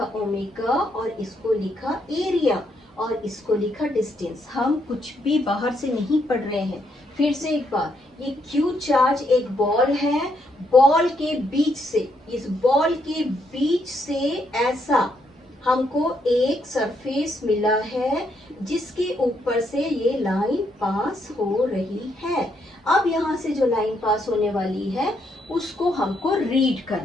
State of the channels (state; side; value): normal; both; correlation 0.75